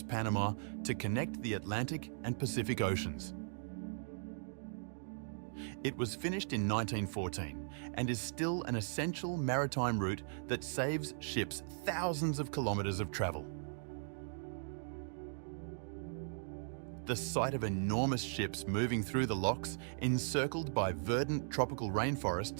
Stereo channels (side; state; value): left; silent; digital silence